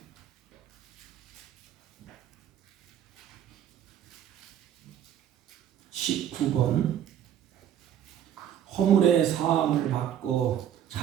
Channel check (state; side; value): quieter; left; 10.1 dB